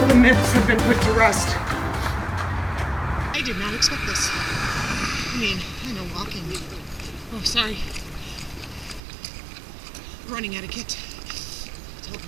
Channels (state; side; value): drops out; left; at 9.0 s